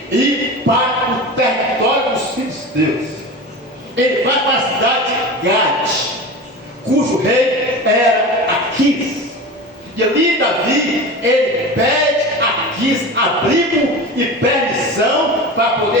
ir para o território dos filisteus. Ele vai para a cidade de Gade, cujo rei era Aquis. E ali Davi, ele pede a Aquis abrigo e permissão para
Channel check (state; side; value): normal; both; correlation 0.30